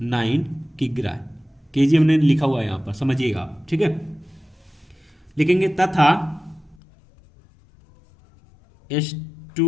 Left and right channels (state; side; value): drops out; right; at 6.8 s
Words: किग्रा। केजी हमने लिखा हुआ है यहां पर, समझिएगा आप। ठीक है, लिखेंगे तथा